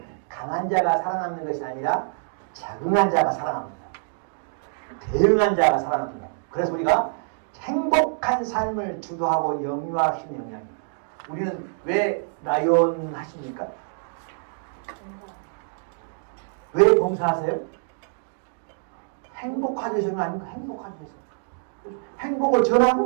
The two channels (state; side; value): silent; left; digital silence